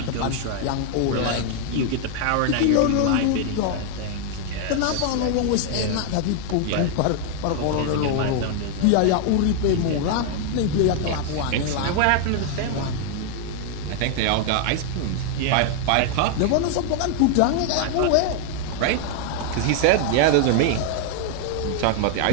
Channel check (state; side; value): different; both; correlation 0.00